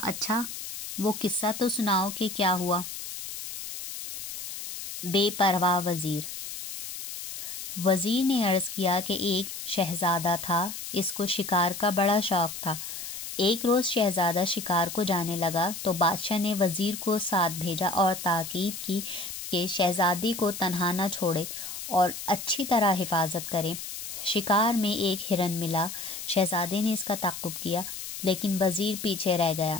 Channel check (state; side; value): noise; left; hiss, 8 dB below the sound